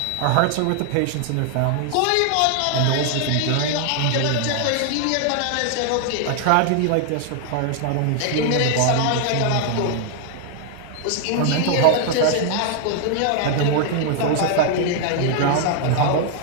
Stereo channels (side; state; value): both; different; correlation 0.00